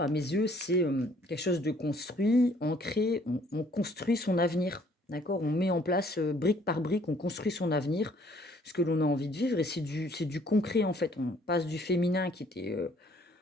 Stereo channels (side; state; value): both; normal; correlation 0.61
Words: à mes yeux, c'est, quelque chose de construit, ancré, on construit son avenir, d'accord? On met en place, brique par brique, on construit son avenir, ce que l'on a envie de vivre et c'est du concret en fait. On passe du féminin qui était,